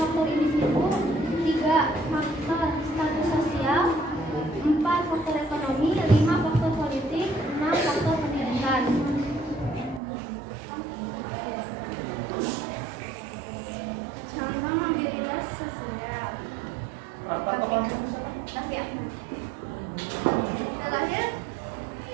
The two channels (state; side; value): drops out; left; at 10.0 s